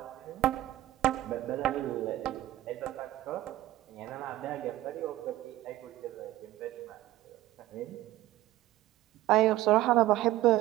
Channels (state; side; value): quieter; left; 15.4 dB